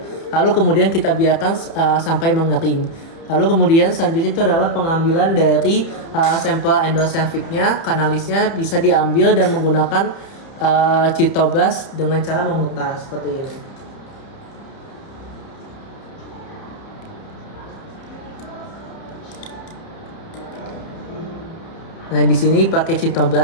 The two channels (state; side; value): late; right; 30 ms